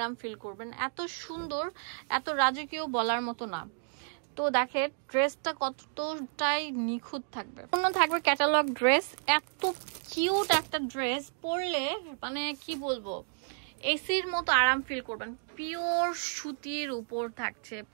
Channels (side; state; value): left; silent; 57 dB below the other